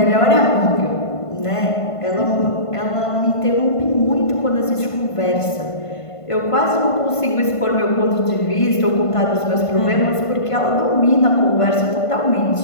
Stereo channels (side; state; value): right; late; 1.5 ms